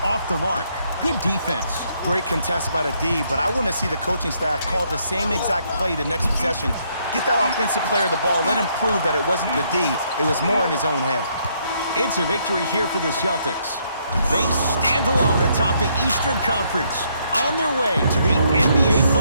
off the mark. Good defense. Great contest by the D, but I want to see the coaching staff call the same exact play the next possession. Get that offensive player the ball. Let him prove that it wasn't the D. It was more in his own head. It's a victory here for the Celtics. They stand alone atop the Eastern Conference, on their way to the NBA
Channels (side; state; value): both; inverted; correlation -0.72